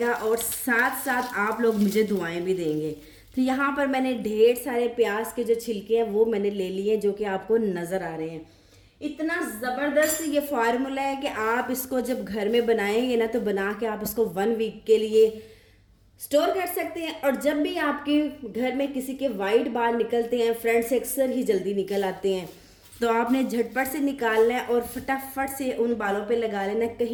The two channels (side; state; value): both; identical; correlation 1.00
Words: और साथ साथ आप लोग मुझे दुआएं भी देंगे। तो यहाँ पर मैंने ढेर सारे प्याज के जो छिलके हैं वो मैंने ले लिए जो कि आपको नज़र आ रहे हैं। इतना ज़बरदस्त ये फार्मूला है कि आप इसको जब घर में बनाएंगे ना तो बना के आप इसको 1 वीक के लिए स्टोर कर सकते हैं। और जब भी आपके घर में किसी के वाइट बाल निकलते हैं, फ्रंट से अक्सर ही जल्दी निकल आते हैं, तो आपने झटपट से निकालना है और फटाफट से उन बालों पे लगा लेना है।